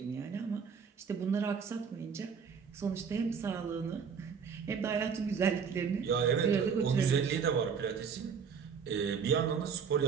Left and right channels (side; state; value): left; quieter; 6.4 dB